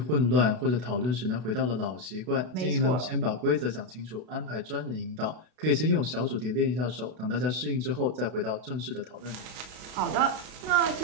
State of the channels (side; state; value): left; late; 32 ms